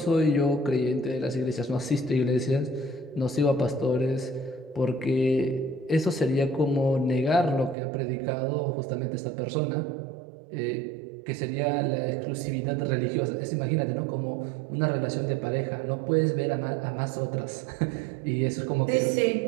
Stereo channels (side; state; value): left; drops out; at 7.8 s